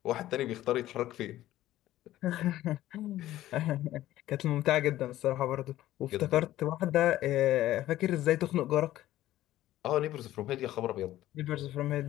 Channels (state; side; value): quieter; right; 14.4 dB